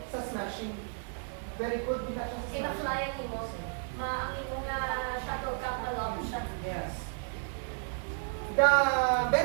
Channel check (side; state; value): left; silent; 56 dB below the other